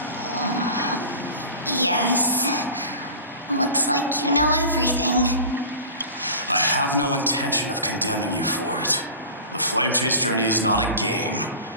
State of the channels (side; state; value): both; inverted; correlation -0.36